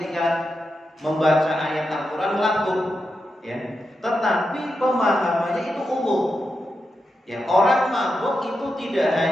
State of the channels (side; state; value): both; normal; correlation 0.87